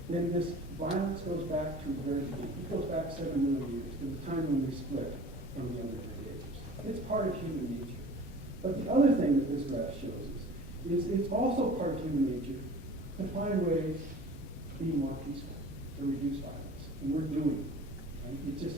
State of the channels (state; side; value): normal; both; correlation 0.44